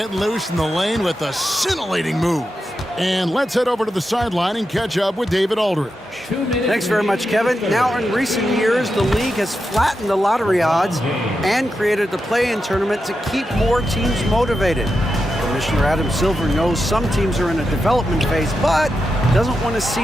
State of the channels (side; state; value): both; normal; correlation 0.88